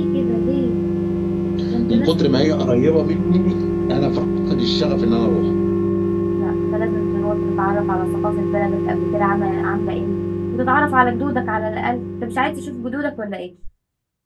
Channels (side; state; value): both; identical; correlation 1.00